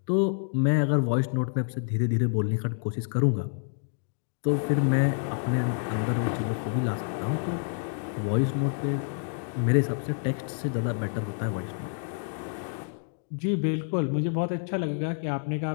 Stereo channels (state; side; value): silent; right; digital silence